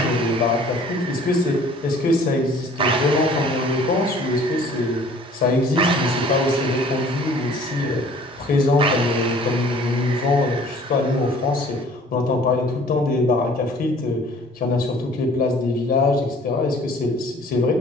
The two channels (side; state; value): both; normal; correlation 0.51